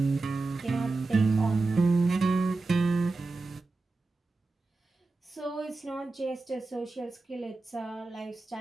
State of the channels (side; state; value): left; quieter; 3.5 dB